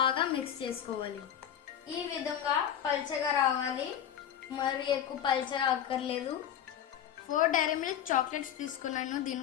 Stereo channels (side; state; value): right; quieter; 9.8 dB